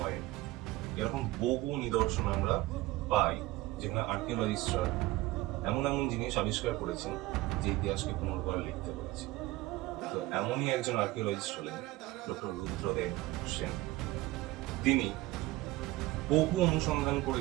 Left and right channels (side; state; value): left; quieter; 18.8 dB